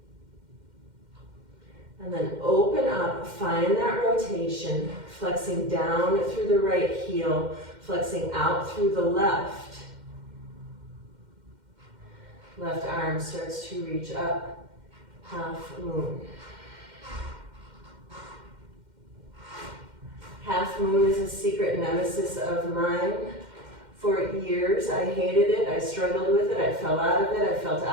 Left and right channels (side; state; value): left; late; 2.1 ms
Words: And then open up, find that rotation, flexing down through the right heel, flexing out through the left. Left arm starts to reach up, half moon. Half moon is a secret nemesis of mine. For years, I hated it, I struggled with it, I fell out of it, I felt